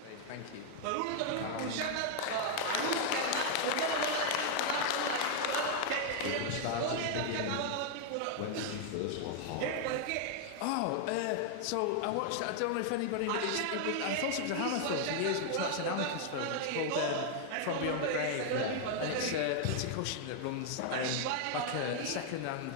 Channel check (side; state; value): both; different; correlation 0.00